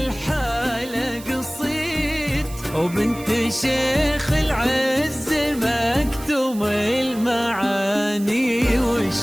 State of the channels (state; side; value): noise; right; hiss, 17 dB below the sound